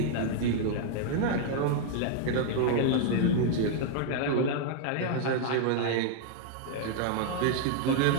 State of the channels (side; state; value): both; different; correlation 0.00